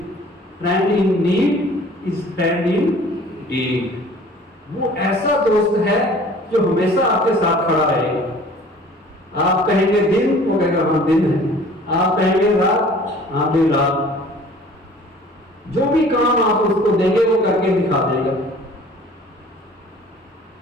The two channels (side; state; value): both; normal; correlation 0.49